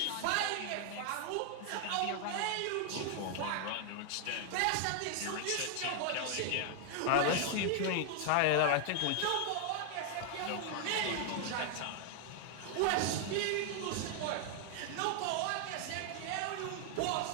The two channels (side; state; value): both; different; correlation 0.00